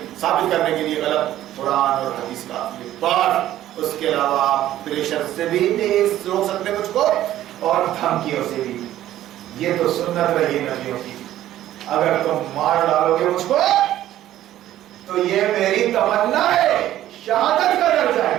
ثابت کرنے کے لیے غلط قرآن اور حدیث کافی ہے. بات اس کے علاوہ پریشر سے بھی نہیں روک سکتے مجھ کو، اور دھمکیوں سے بھی. یہ تو سنت رہی نبیوں کی. اگر تم مار ڈالو گے مجھ کو تو یہ میری تمنا ہے، شہادت کا درجہ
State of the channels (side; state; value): left; quieter; 13.2 dB